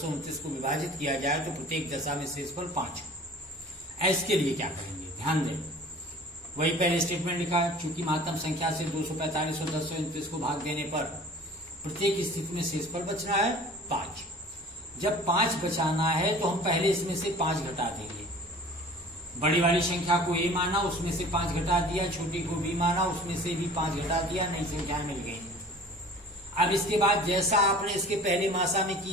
को विभाजित किया जाए तो प्रत्येक दशा में शेषफल 5 हो। इसके लिए क्या करेंगे ध्यान दें। वही पहले स्टेटमेंट लिखा है, चूंकि महत्तम संख्या से 245 और 1029 को भाग देने पर प्रत्येक स्थिति में शेषफल बचना है 5। जब 5 बचाना है तो हम पहले इसमें से 5 घटा देंगे। बड़ी वाली संख्या को ए माना, उसमें से 5 घटा दिया, छोटी को बी माना, उसमें से भी 5 घटा दिया, नई संख्या मिल गई। अब इसके बाद जैसा आपने इसके पहले मासा में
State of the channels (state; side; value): normal; both; correlation 0.45